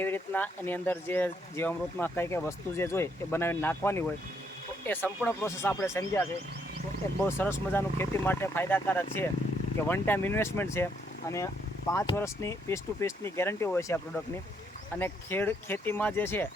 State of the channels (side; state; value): both; normal; correlation 0.72